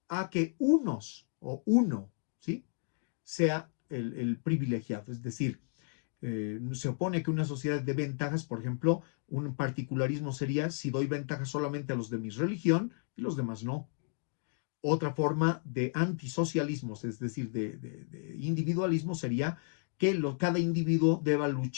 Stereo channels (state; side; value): silent; right; 56 dB below the other